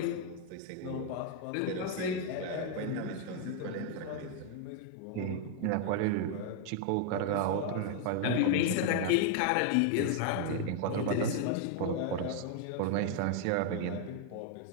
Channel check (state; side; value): different; both; correlation 0.00